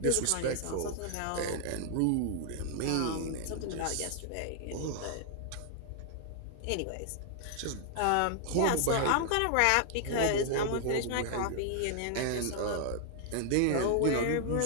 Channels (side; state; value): both; different; correlation 0.00